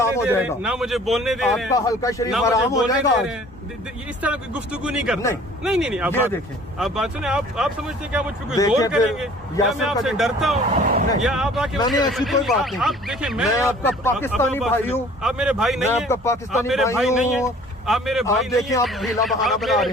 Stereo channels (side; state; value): both; normal; correlation 0.51